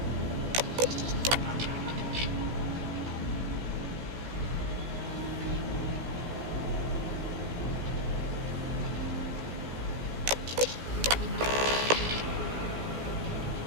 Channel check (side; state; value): left; late; 16 ms